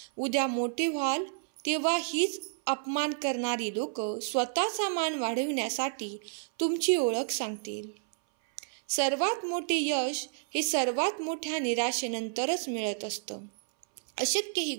उद्या मोठे व्हाल तेव्हा हीच अपमान करणारी लोक स्वतःचा मान वाढविण्यासाठी तुमची ओळख सांगतील. सर्वात मोठे यश हे सर्वात मोठ्या निराशेनंतरच मिळत असतं. अशक्य ही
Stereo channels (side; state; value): left; silent; 57 dB below the other